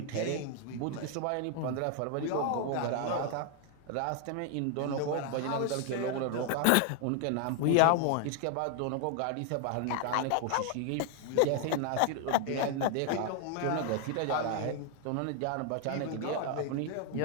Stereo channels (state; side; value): different; both; correlation 0.00